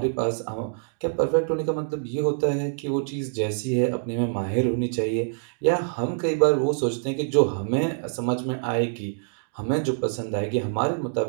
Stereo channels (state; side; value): silent; left; digital silence